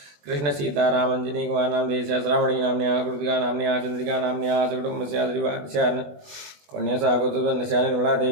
कृष्ण सीताराम अंजनी कुमार नामधेयस्या श्रावणी नाम्न्याः कृतिका नाम्न्याः चंद्रिका नाम्न्याः सकुटुम्बस्या श्रीवारस्या कन्यासा गोत्रवनस्या निर्मला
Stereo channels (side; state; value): left; late; 20 ms